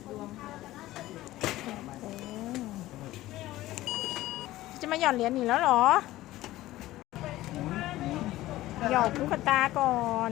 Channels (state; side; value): quieter; right; 16.2 dB